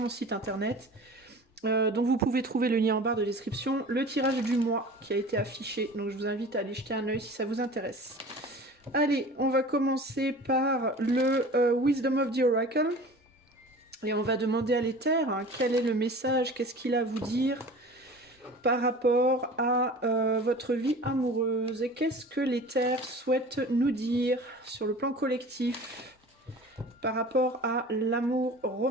site internet. Donc, vous pouvez trouver le lien en barre de description. Le tirage du mois qui a été affiché. Donc, je vous invite à aller jeter un œil si ça vous intéresse. Allez, on va commencer par le Wisdom of the Oracle. Et on va demander à l'éther quel est le message, qu'est-ce qu'il a à vous dire par rapport à votre vie amoureuse. Et qu'est-ce que l'éther souhaite nous dire sur le plan collectif par rapport à l'amour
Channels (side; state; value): both; normal; correlation 0.40